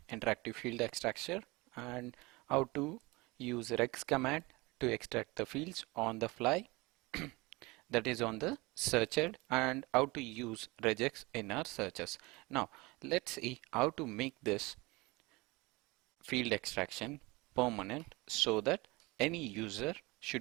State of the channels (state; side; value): quieter; left; 23.7 dB